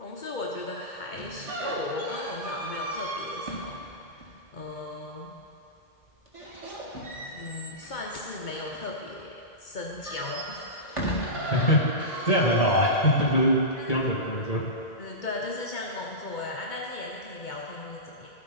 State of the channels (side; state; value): right; late; 2.2 ms